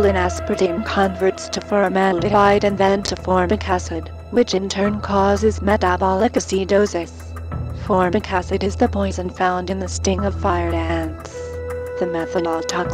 in aspartame converts to formaldehyde and then to formic acid, which in turn causes metabolic acidosis. Formic acid is the poison found in the sting of fire ants. The methanol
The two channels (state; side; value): identical; both; correlation 1.00